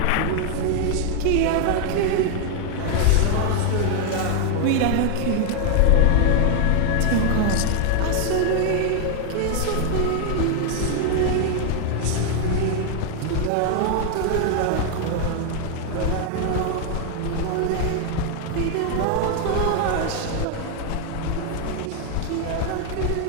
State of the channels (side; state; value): both; different; correlation 0.00